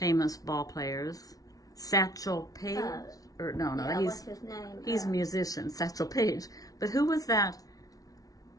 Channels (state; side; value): late; right; 0.18 ms